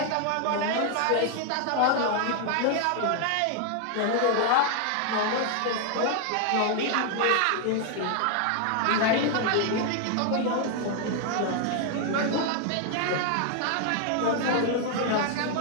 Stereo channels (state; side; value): different; both; correlation 0.00